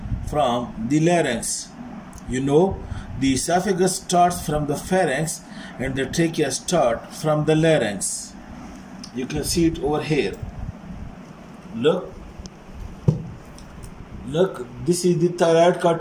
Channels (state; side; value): identical; both; correlation 1.00